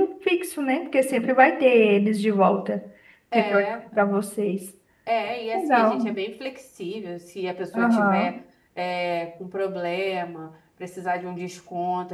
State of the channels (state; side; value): identical; both; correlation 1.00